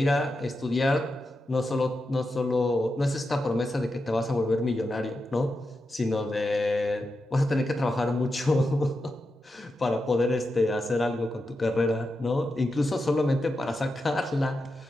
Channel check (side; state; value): both; normal; correlation 0.88